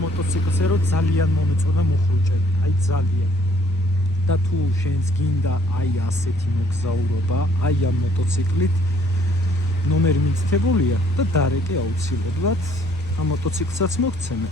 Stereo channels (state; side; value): normal; both; correlation 0.62